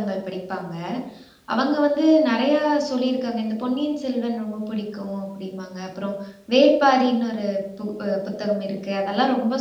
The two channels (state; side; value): identical; both; correlation 1.00